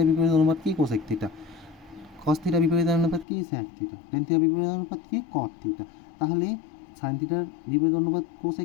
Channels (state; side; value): drops out; right; at 3.2 s